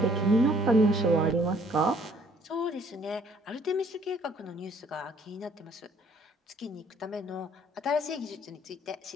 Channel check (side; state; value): both; normal; correlation 0.61